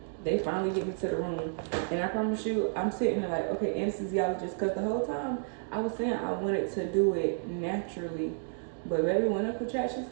they finally get me to the room and I promise you I'm sitting there like, okay, anesthesiologist, because the whole time I was saying I wanted to do it naturally, but baby, when the contractions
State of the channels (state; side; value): silent; left; digital silence